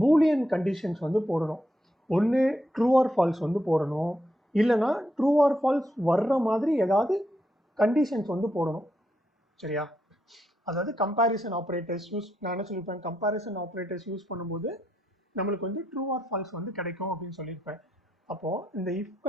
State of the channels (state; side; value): normal; both; correlation 0.80